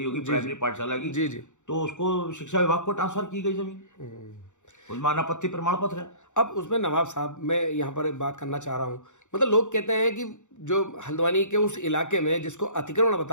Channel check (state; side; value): late; right; 0.85 ms